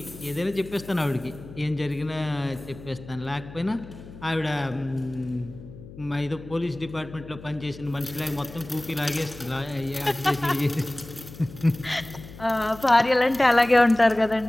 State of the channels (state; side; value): noise; left; hum, 16 dB below the sound